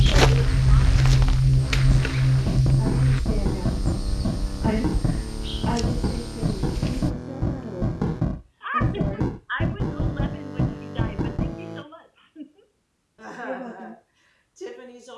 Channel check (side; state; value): both; identical; correlation 1.00